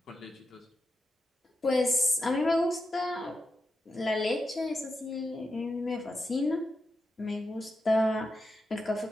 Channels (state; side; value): normal; both; correlation 0.88